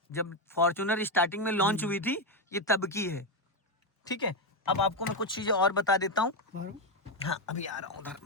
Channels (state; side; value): normal; both; correlation 0.07